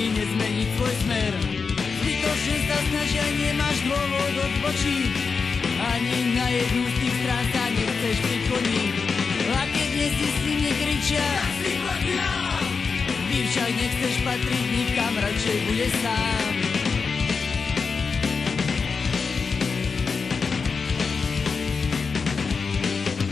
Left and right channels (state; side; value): quieter; right; 5.1 dB